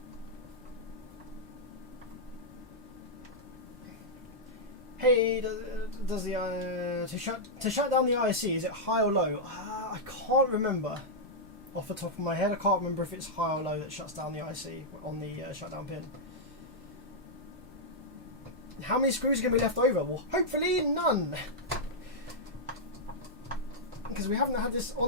Hey, does the to shut down the IC, is it high or low? I can't remember. Off the top of my head, I can't remember if it's high or low that shuts down the IC on the shutdown pin. How many screws are going to be left over? Well, hopefully none. Because we haven't had this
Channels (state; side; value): normal; both; correlation -0.08